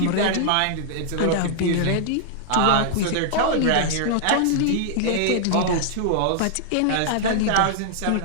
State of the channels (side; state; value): both; different; correlation -0.01